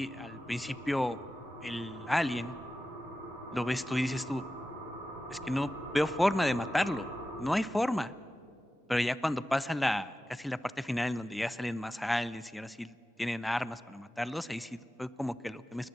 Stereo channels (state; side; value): normal; both; correlation 0.93